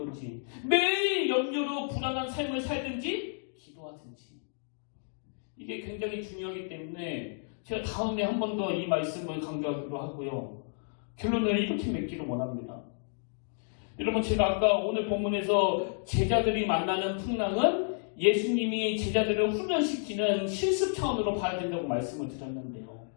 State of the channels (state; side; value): silent; right; digital silence